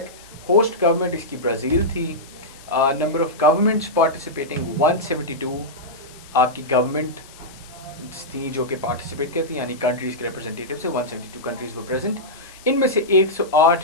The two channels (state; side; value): noise; left; hiss, 21 dB below the sound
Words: होस्ट गवर्नमेंट इसकी ब्राज़ील थी। नंबर ऑफ गवर्नमेंट्स पार्टिसिपेटिंग 172 आपकी गवर्नमेंट थी जो कि पार्टिसिपेट करती, यानी कंट्रीज़ के रिप्रेजेंटेटिव से 172 कंट्रीज़ वर प्रेजेंट। इनमें से